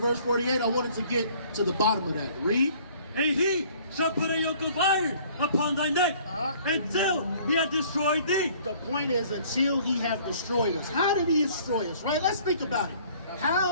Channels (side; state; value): both; inverted; correlation -0.55